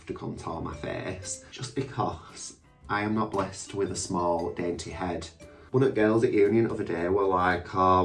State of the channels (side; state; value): both; identical; correlation 1.00